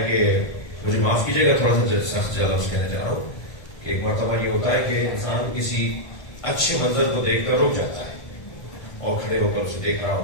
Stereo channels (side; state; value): right; late; 1.5 ms